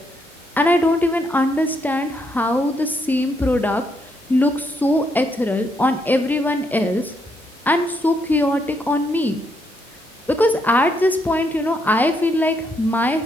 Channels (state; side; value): normal; both; correlation 0.76